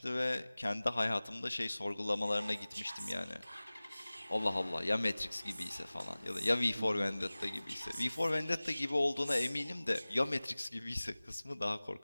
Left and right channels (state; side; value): inverted; both; correlation -0.99